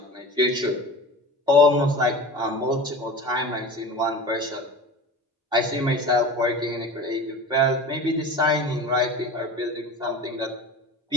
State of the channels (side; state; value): both; normal; correlation 0.35